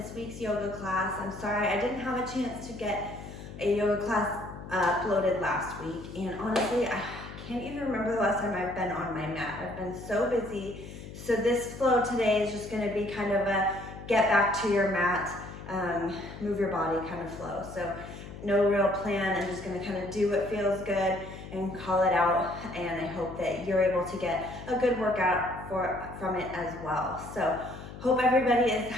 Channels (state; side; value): noise; left; hum, 13 dB below the sound